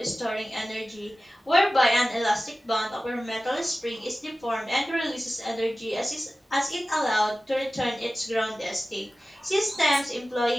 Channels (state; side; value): normal; both; correlation 0.96